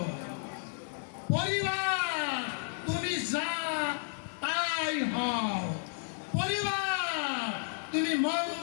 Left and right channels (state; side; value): silent; right; digital silence